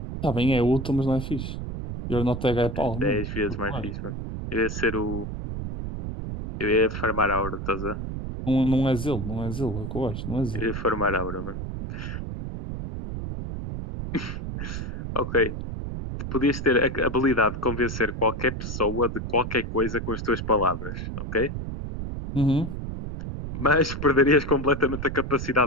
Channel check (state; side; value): noise; right; rumble, 6 dB below the sound